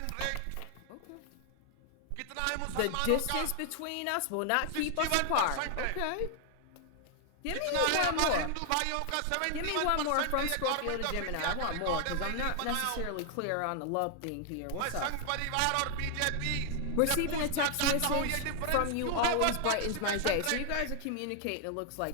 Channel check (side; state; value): both; different; correlation 0.00